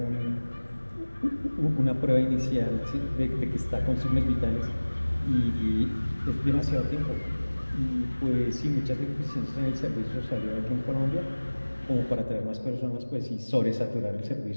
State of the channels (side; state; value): both; inverted; correlation -1.00